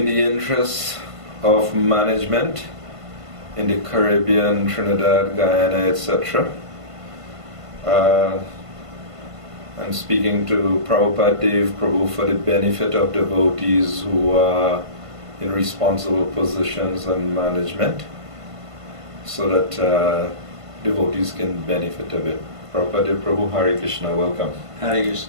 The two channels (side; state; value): left; late; 1.5 ms